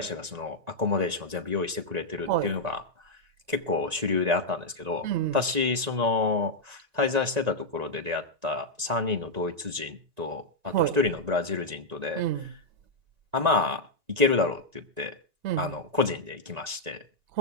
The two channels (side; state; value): left; late; 1.9 ms